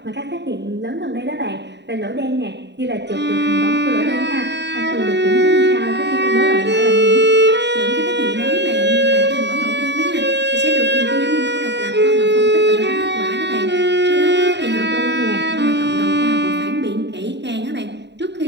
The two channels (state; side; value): late; left; 0.51 ms